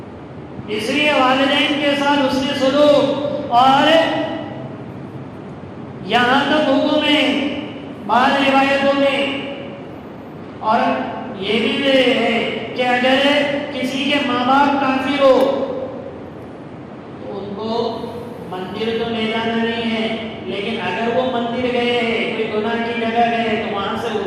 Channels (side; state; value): both; identical; correlation 1.00